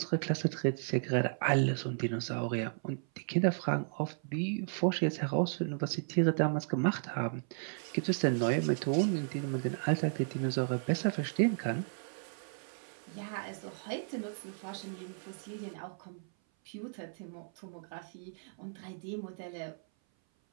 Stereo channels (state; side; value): silent; left; 55 dB below the other